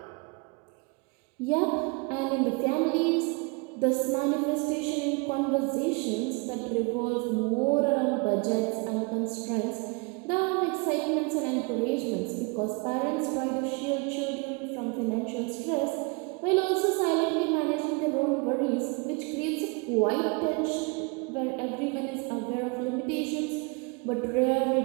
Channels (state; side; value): quieter; left; 30.2 dB